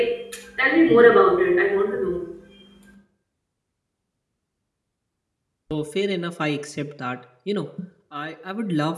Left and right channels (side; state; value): both; identical; correlation 1.00